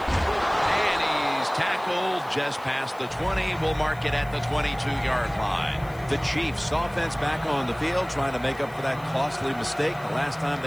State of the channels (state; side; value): noise; left; hiss, 25 dB below the sound